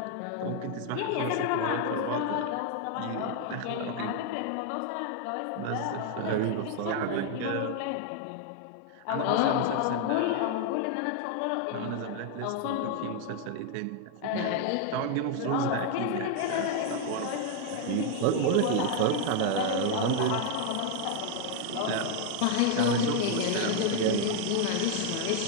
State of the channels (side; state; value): both; different; correlation 0.00